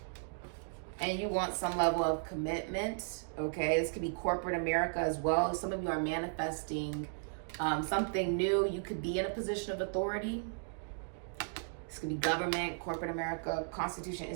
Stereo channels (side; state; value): left; silent; digital silence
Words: And you want some level of commitment. Okay, this could be corporate America as well. Some of you are manifesting something new. You could be in a position of authority. This could be government, corporate America, constitution,